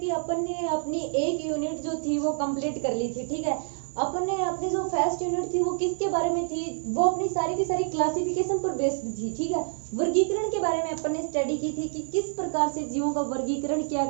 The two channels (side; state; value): left; silent; digital silence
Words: अपन ने अपनी एक यूनिट जो थी वो कंप्लीट कर ली थी। ठीक है, अपन ने अपनी जो फर्स्ट यूनिट थी वो किसके बारे में थी, वो अपनी सारी की सारी क्लासिफिकेशन पर बेस्ड थी। ठीक है, वर्गीकरण के बारे में अपन ने स्टडी की थी कि किस प्रकार से जीवों का वर्गीकरण किया